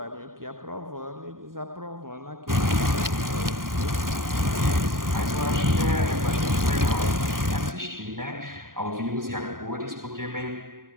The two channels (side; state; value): left; late; 0.91 ms